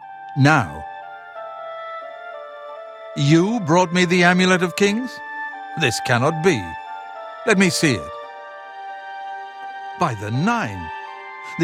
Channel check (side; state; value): both; identical; correlation 1.00